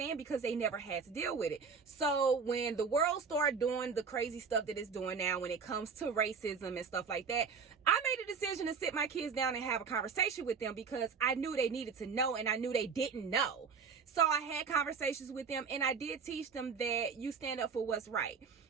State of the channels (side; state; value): left; quieter; 5.6 dB